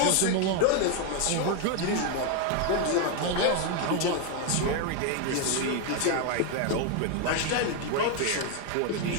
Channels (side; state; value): both; different; correlation 0.01